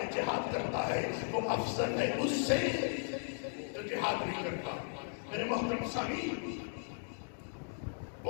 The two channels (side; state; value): right; silent; digital silence